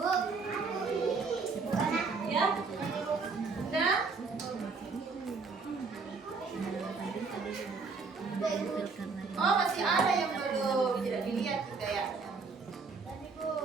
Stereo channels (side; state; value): left; quieter; 4.5 dB